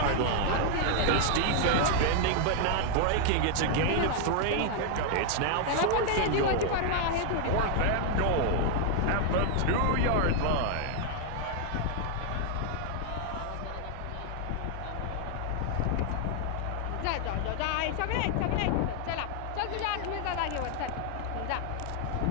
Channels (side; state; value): both; different; correlation 0.00